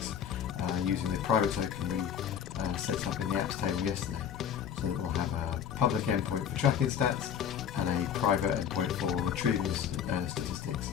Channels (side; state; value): right; quieter; 8.6 dB